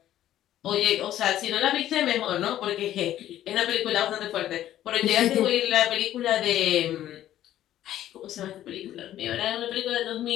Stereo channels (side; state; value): right; quieter; 12.5 dB